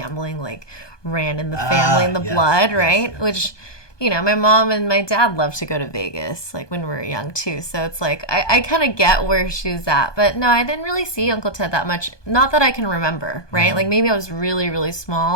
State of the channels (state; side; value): late; right; 1.2 ms